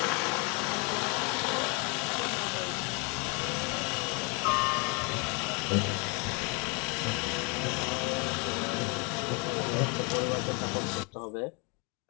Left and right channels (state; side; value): quieter; right; 32.8 dB